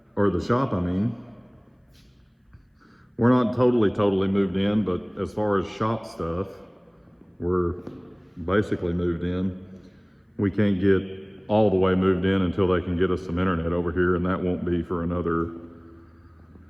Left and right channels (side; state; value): both; identical; correlation 1.00